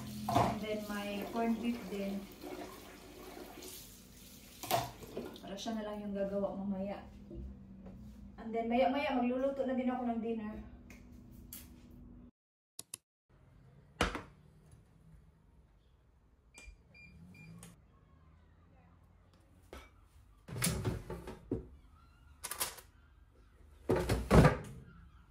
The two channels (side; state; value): both; identical; correlation 1.00